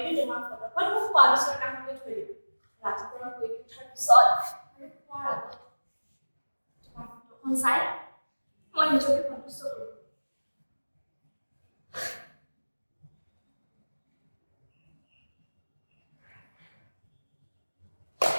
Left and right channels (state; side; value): inverted; both; correlation -1.00